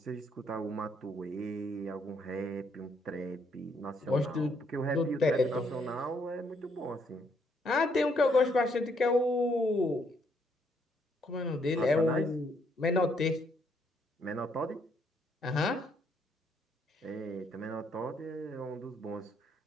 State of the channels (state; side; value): normal; both; correlation 0.71